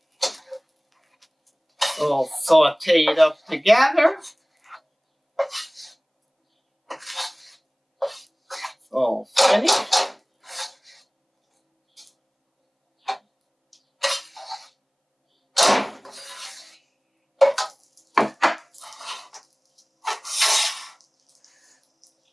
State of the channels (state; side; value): identical; both; correlation 1.00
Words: We'll saute it up together. All finished.